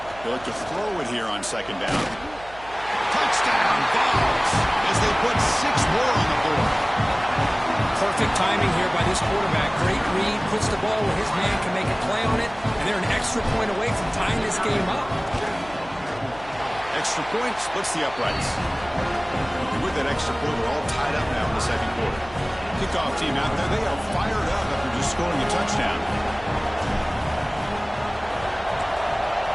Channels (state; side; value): noise; right; hum, 20 dB below the sound